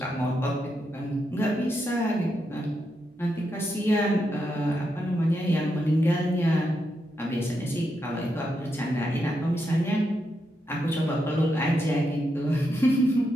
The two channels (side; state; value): both; normal; correlation 0.83